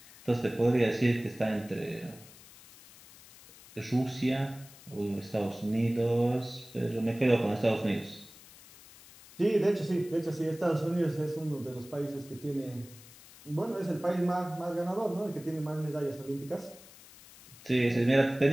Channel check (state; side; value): noise; left; hiss, 21 dB below the sound